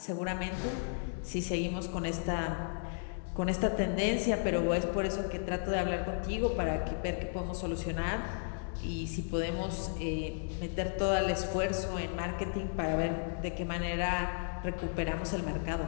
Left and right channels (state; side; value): silent; right; digital silence